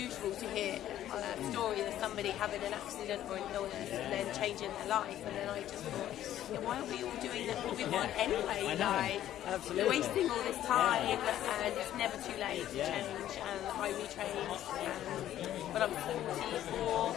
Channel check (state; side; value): quieter; right; 12.2 dB